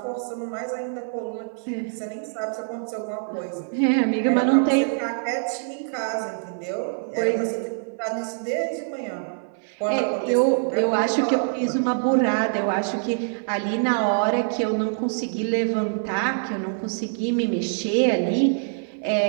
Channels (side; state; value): left; silent; 57 dB below the other